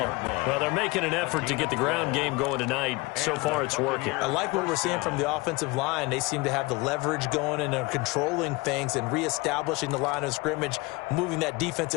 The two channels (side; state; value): right; quieter; 23.8 dB